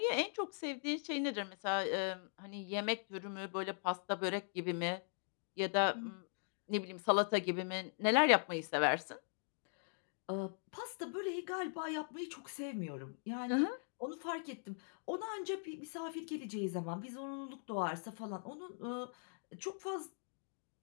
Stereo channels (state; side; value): silent; right; digital silence